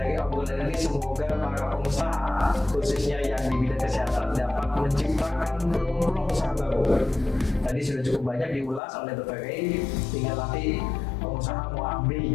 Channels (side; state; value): right; drops out; at 8.8 s